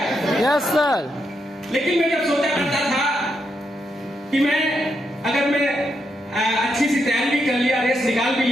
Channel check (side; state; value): both; normal; correlation 0.82